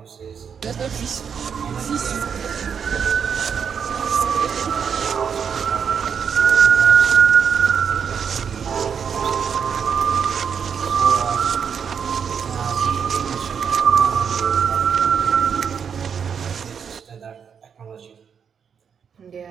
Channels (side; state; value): left; quieter; 7.1 dB